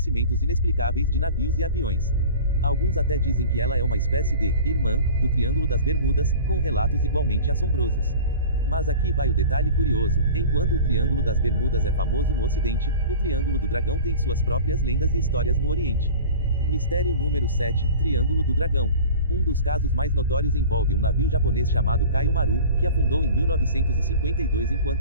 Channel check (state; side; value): inverted; both; correlation -0.38